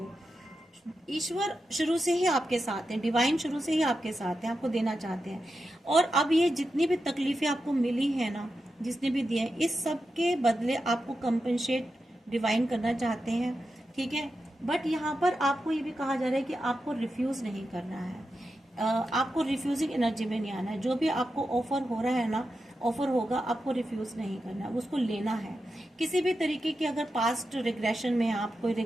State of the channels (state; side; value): normal; both; correlation 0.89